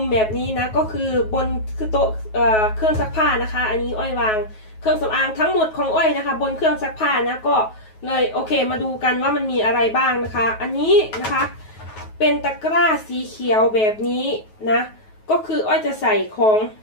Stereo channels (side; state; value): right; late; 9.3 ms